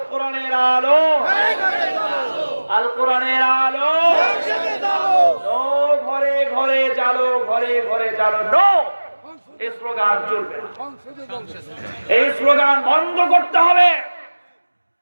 কোরআনের আলো, আল কোরআনের আলো, নো ঘরে ঘরে জালো, ঘরে ঘরে জালো, নো। এই স্লোগান চলবে, এই স্লোগান বন্ধ করতে হবে।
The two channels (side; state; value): both; inverted; correlation -1.00